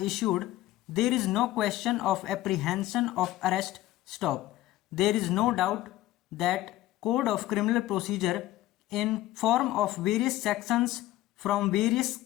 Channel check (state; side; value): quieter; right; 15.5 dB